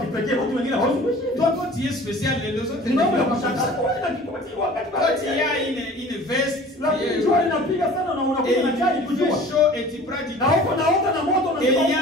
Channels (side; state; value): both; normal; correlation 0.45